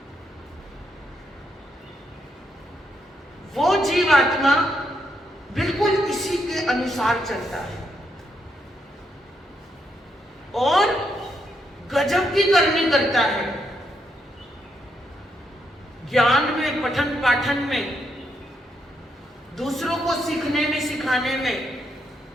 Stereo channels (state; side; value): normal; both; correlation 0.78